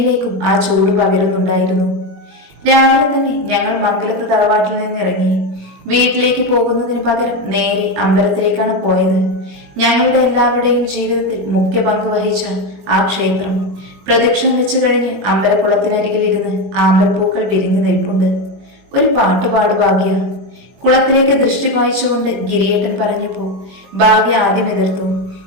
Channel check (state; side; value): late; left; 21 ms